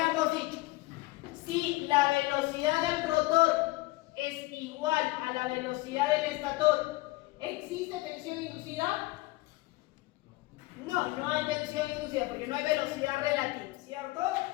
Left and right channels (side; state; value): right; quieter; 20.3 dB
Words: dicho, si la velocidad del rotor es igual a la velocidad del estator, ¿existe tensión inducida? No, no hay tensión inducida porque no hay velocidad relativa, ¿cierto?